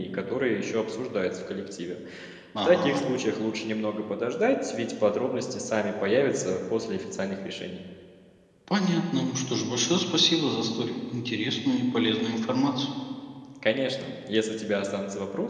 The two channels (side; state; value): both; identical; correlation 1.00